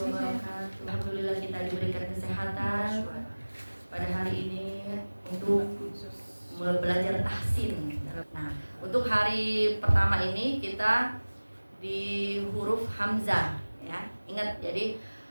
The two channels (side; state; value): both; inverted; correlation -1.00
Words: Alhamdulillah kita diberikan kesehatan pada hari ini untuk belajar tahsin. Nah, untuk hari pertama ini kita di huruf hamzah, ya. Ingat, jadi